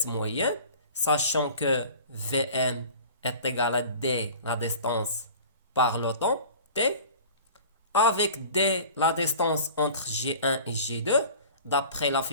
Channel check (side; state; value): both; inverted; correlation -0.42